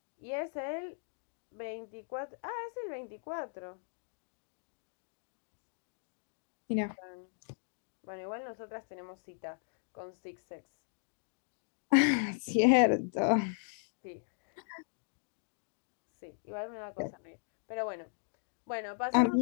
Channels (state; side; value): silent; right; digital silence